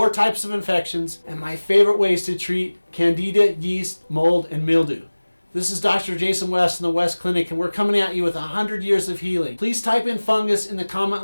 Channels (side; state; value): both; inverted; correlation -1.00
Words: types of infections and my favorite ways to treat Candida, yeast, mold, and mildew. This is Dr. Jason West in the West Clinic, and we're coming at you with 100 years of healing. Please type in fungus in the